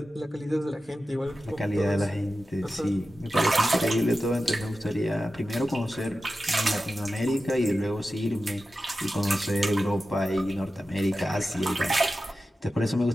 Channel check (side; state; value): both; normal; correlation 0.93